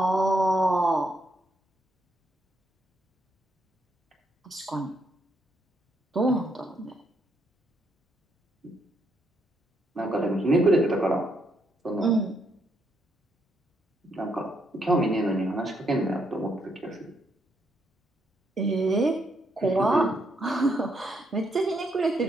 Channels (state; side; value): normal; both; correlation 0.76